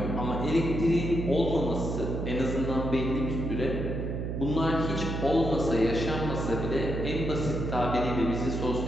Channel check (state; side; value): noise; right; hum, 3 dB below the sound